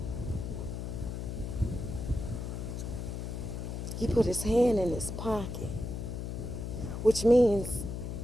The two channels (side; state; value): left; noise; hum, 5 dB below the sound